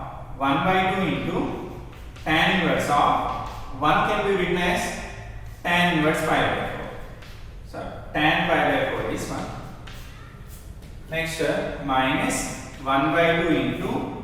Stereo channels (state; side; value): identical; both; correlation 1.00